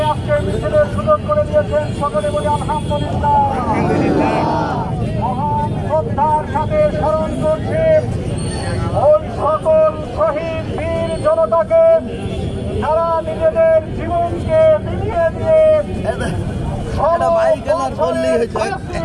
আজকে মিছিলের সুযোগ করে দিয়েছেন। সকলে বলি আলহামদুলিল্লাহ। মহান শ্রদ্ধার সাথে স্মরণ করছি ওই সকল শহীদ বীর জনতাকে যারা নিজেদের জীবনকে বিলিয়ে দিয়ে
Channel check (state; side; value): identical; both; correlation 1.00